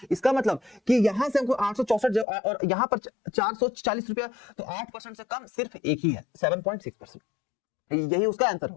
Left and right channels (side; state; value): right; drops out; at 2.2 s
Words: इसका मतलब कि यहां से हमको 864 और यहाँ पर 440 रुपया, तो 8% से कम सिर्फ एक ही है 7.6%। यही उसका आंसर